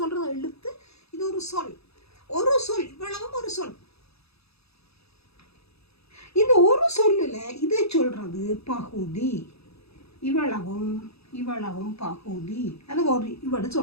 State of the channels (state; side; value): late; right; 0.78 ms